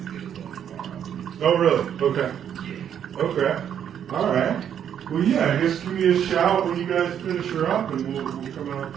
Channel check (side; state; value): left; quieter; 9.1 dB